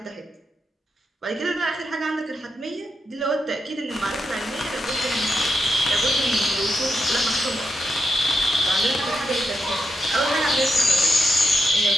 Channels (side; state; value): both; normal; correlation 0.84